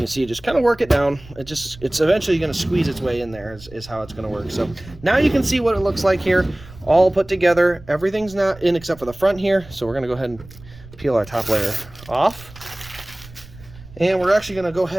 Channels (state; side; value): noise; right; rumble, 19 dB below the sound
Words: see you just kind of work it down. It's eventually going to squeeze its way in there is how it's going to work. So now you can see what it looks like here, all put together. Everything's not in except for the front here. So we're going to go ahead and peel our top layer off. And we're actually going to go